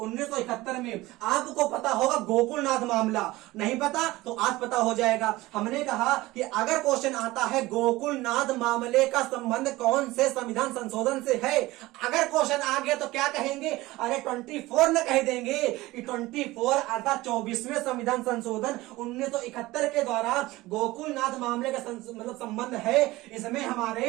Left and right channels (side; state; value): left; quieter; 19.0 dB